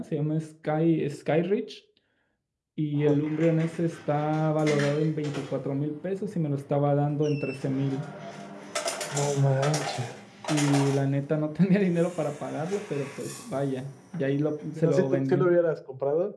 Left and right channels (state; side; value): identical; both; correlation 1.00